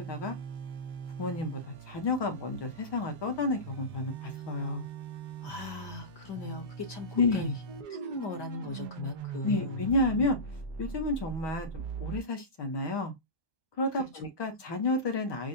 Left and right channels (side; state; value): right; late; 1.2 ms